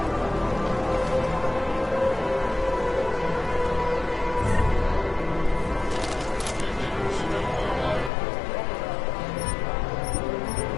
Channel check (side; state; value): right; drops out; at 8.1 s